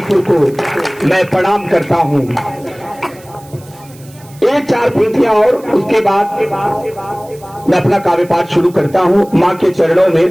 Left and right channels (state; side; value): noise; right; hiss, 25 dB below the sound